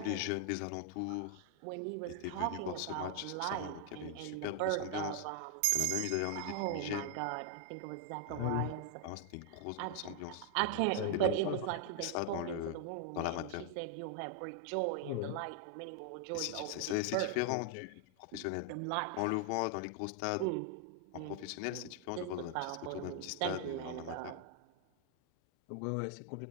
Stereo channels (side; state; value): both; different; correlation 0.00